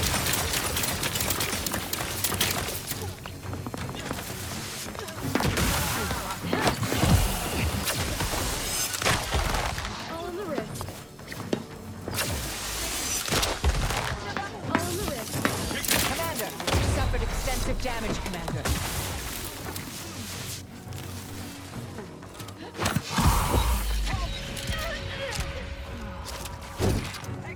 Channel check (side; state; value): both; identical; correlation 1.00